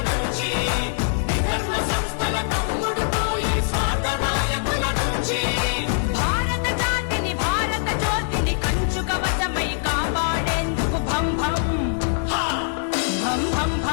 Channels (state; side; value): silent; right; 57 dB below the other